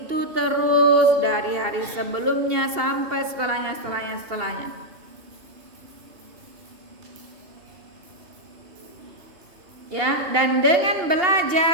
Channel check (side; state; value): left; late; 2.7 ms